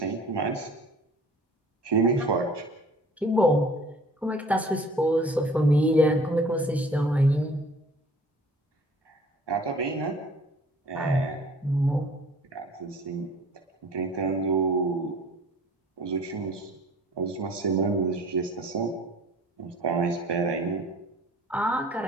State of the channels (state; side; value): normal; both; correlation 0.50